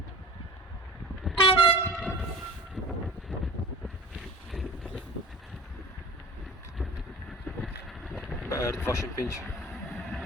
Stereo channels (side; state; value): both; normal; correlation 0.39